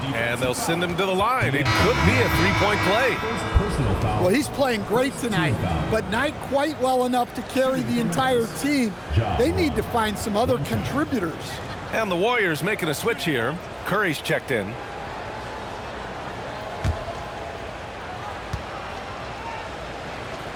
and they'll send him to the line. It could be a three-point play. Well, he's playing great tonight, but not quite well enough to carry the entire team. They need to find some other contributors. And the Warriors making a switch here. Curry's checked in.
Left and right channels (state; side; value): identical; both; correlation 1.00